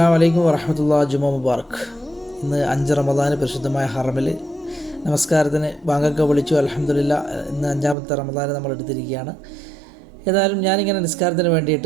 അലൈക്കും വറഹ്മത്തുള്ളാഹി ജുമാ മുബാറക്. ഇന്ന് 5 റമദാന് പരിശുദ്ധമായ ഹറമിൽ നമസ്കാരത്തിന് ബാങ്കൊക്കെ വിളിച്ചു. അൽഹംദുലില്ലാഹ്, ഇന്ന് 5-ാമത്തെ റമദാന് നമ്മൾ എടുത്തിരിക്കുകയാണ്. ഏതായാലും ഞാനിങ്ങനെ നിസ്കാരത്തിന്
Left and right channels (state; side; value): drops out; left; at 8.0 s